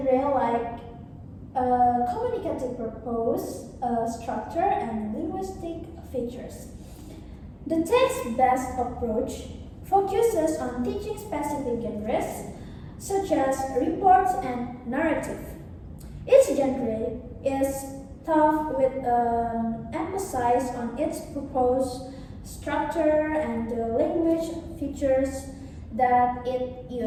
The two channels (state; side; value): identical; both; correlation 1.00